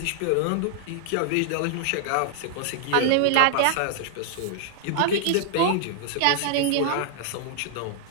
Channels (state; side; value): different; both; correlation 0.00